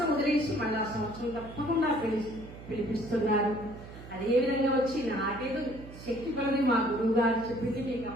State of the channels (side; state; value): right; noise; hum, 15 dB below the sound